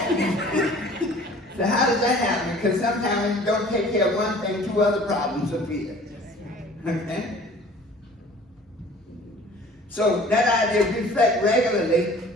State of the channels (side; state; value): both; normal; correlation 0.48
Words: So how does that happen? Because sometimes when you don't take care of one thing, 2 other problems appear. Okay? So that idea of reflect regularly,